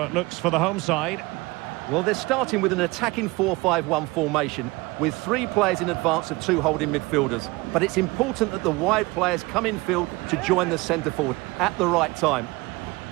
it looks for the home side. Well, they're starting with an attacking 4-5-1 formation with 3 players in advance of 2 holding midfielders. But it's important that the wide players come in field to join the centre forward at the right time.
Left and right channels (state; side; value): quieter; left; 22.9 dB